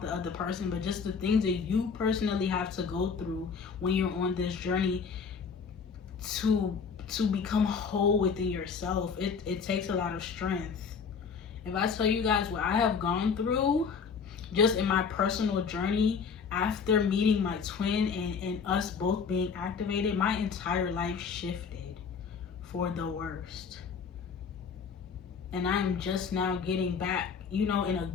the other person, but just the things that you personally have to go through when you're on this journey to become whole within yourself. It takes a lot of strength. If I tell you guys what I have gone through just in my personal journey after meeting my twin and us both being activated, my entire life shifted for the worst. And I am just now getting back, you know, in a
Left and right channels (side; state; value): right; quieter; 5.9 dB